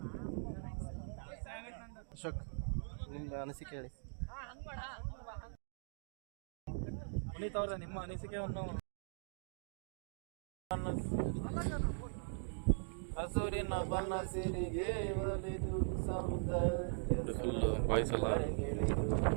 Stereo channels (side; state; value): left; silent; digital silence